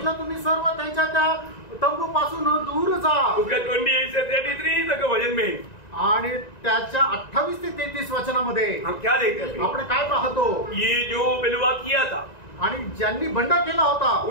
तुम्ही सर्व त्यांच्या त्या तंबू पासून दूर जा। उसका 28 से 33 तक वजन में आणि त्याच्या 28 ते 33 वचनामध्ये हम क्या देखते हैं, आपण काय पाहतो, ये जो बलवा किया था आणि ज्यांनी बंड केला होता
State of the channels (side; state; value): right; late; 1.9 ms